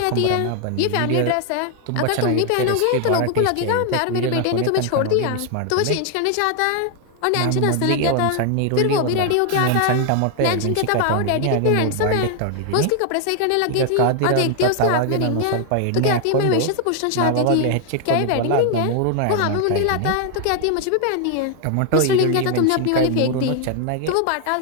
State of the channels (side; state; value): both; different; correlation 0.00